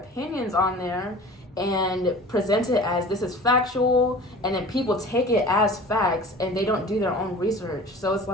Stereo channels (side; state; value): both; normal; correlation 0.41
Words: on there and present it as this is factual, and then people take it as facts and they don't do their own research. So it's